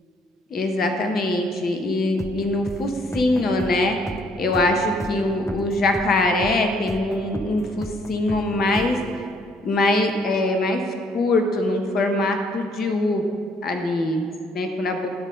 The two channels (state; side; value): normal; both; correlation 0.65